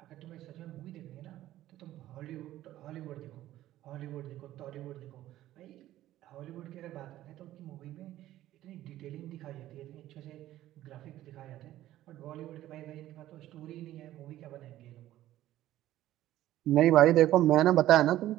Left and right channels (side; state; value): left; quieter; 14.1 dB